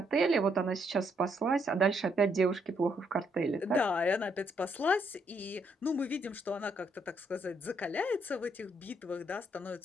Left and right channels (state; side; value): normal; both; correlation 0.73